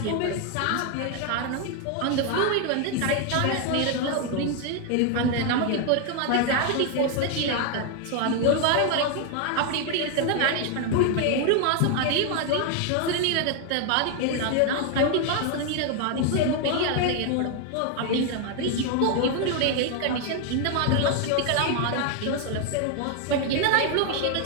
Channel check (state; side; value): different; both; correlation 0.01